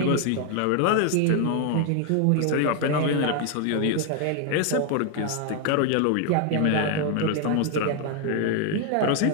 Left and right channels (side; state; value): both; different; correlation 0.00